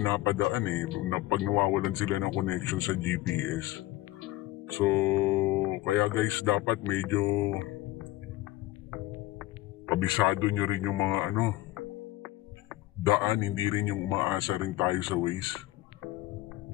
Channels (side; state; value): right; quieter; 17.5 dB